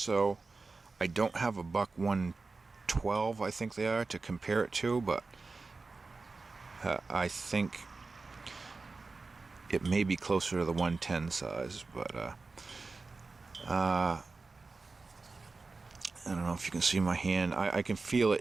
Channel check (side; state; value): left; quieter; 3.9 dB